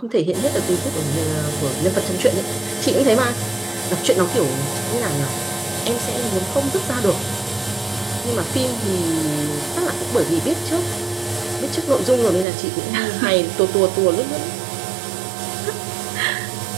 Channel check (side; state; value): left; drops out; at 12.5 s